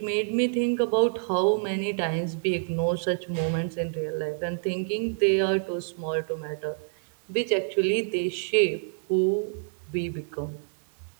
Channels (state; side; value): silent; left; 60 dB below the other